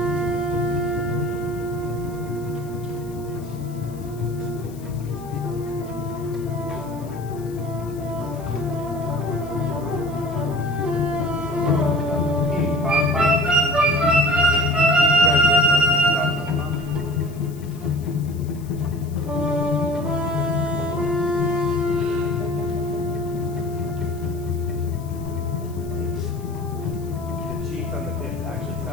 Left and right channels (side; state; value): left; noise; hiss, 23 dB below the sound